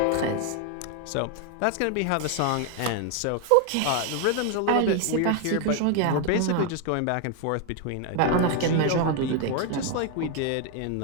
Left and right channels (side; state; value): both; different; correlation 0.01